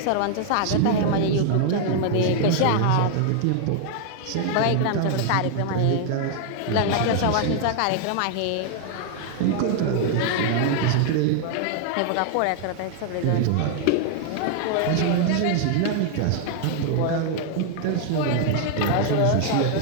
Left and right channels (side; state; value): both; different; correlation 0.00